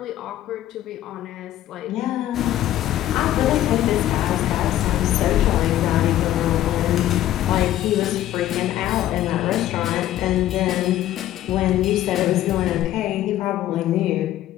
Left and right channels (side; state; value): right; quieter; 13.1 dB